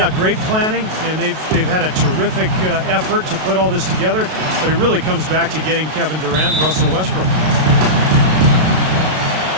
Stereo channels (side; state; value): left; late; 32 ms